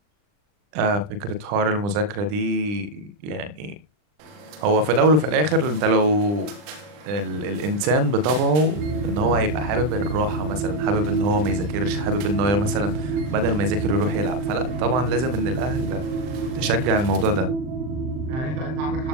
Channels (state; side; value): late; left; 39 ms